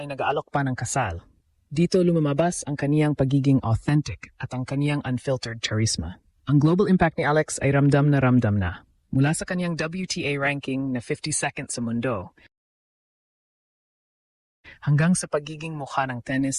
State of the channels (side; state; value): both; identical; correlation 1.00